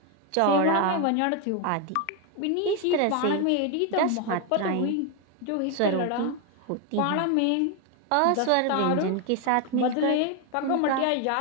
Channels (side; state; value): both; different; correlation 0.01